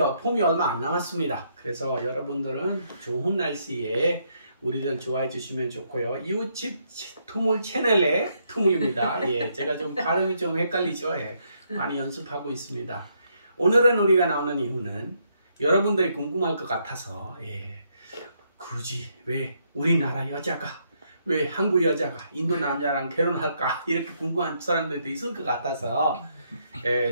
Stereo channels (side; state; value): both; inverted; correlation -0.75